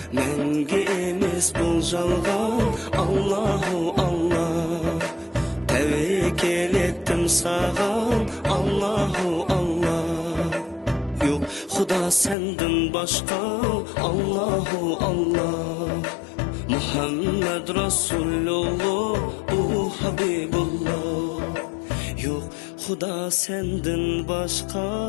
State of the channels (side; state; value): right; drops out; at 12.4 s